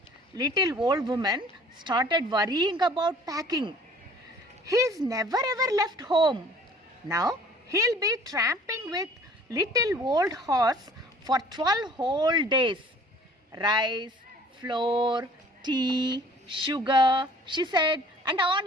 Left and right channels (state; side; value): normal; both; correlation 0.52